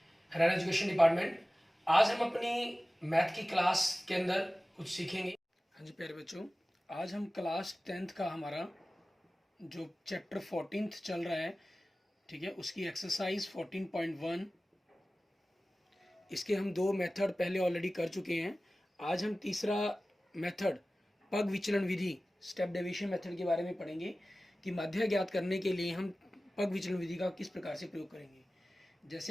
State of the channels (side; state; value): both; normal; correlation 0.97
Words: हरियाणा एजुकेशन डिपार्टमेंट। आज हम अपनी मैथ की क्लास के अंदर कुछ सीखेंगे। हाँ जी प्यारे बच्चों, आज हम क्लास 10th का हमारा जो चैप्टर 14th चल रहा है, ठीक है, उसकी एक्सरसाइज 14.1, इसके हम दो मेथड पहले ऑलरेडी कर चुके हैं। आज हम तीसरा मेथड पग विचलन विधि, स्टेप डेविएशन मेथड के बारे में पढ़ेंगे कि माध्य ज्ञात करने के लिए हम पग विचलन विधि का किस प्रकार से प्रयोग करेंगे।